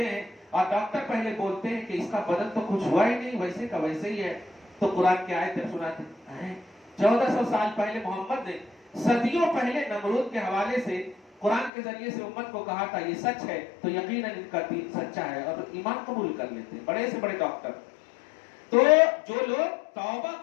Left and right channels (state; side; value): drops out; right; at 11.7 s